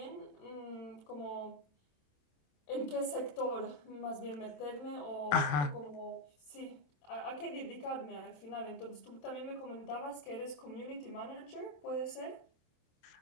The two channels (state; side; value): late; right; 27 ms